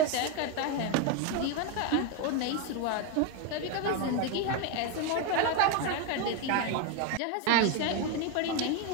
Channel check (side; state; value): both; different; correlation 0.02